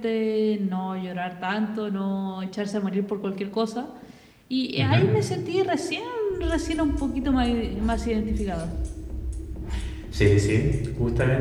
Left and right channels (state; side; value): identical; both; correlation 1.00